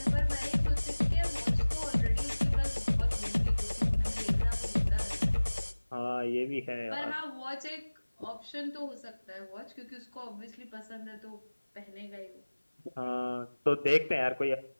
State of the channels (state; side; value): inverted; both; correlation -1.00